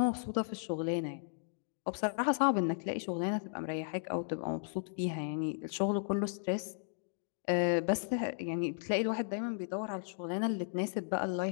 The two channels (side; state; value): right; silent; digital silence